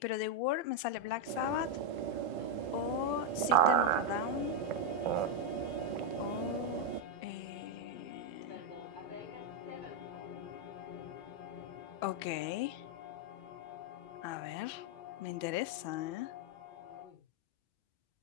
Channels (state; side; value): late; right; 2.6 ms